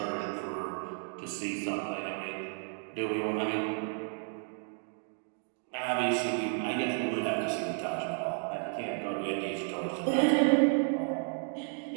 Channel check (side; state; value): left; silent; 56 dB below the other